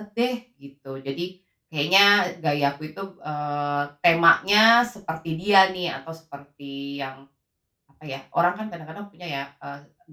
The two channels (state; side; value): identical; both; correlation 1.00